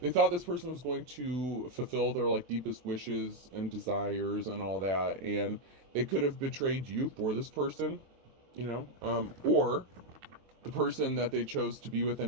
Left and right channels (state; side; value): late; left; 23 ms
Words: thought this person was going to fulfill their like deepest wishes and desires and all that, and they could have betrayed you for this person, or the person that they chose to be with